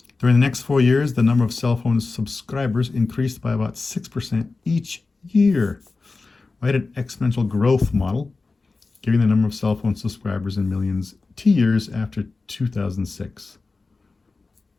During the next 4 years, the number of cell phone subscribers increased by about 6% each year. Write an exponential growth model, giving the number of cell phone subscribers in millions T years after 2006.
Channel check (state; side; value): quieter; right; 3.8 dB